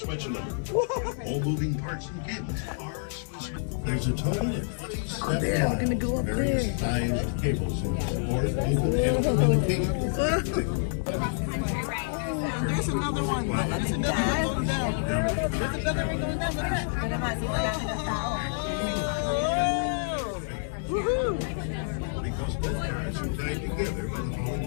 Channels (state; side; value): silent; right; digital silence